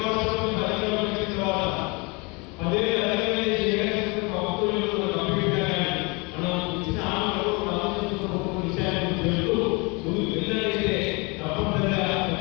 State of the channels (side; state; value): right; quieter; 28.8 dB